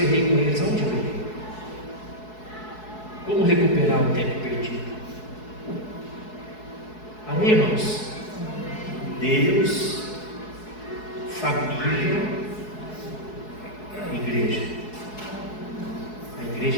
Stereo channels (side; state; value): right; late; 4.7 ms